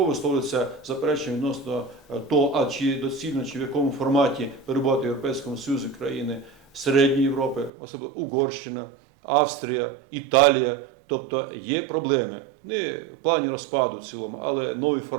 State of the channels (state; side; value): drops out; left; at 7.7 s